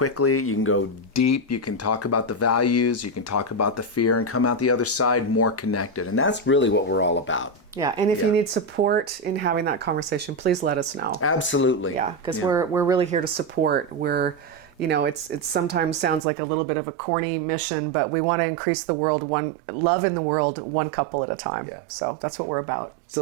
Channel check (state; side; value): drops out; left; at 16.2 s